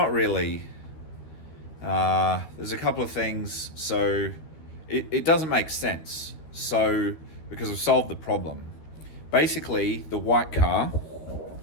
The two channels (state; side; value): late; right; 12 ms